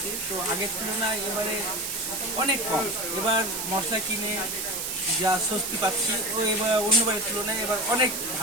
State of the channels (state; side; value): noise; right; hiss, 3 dB below the sound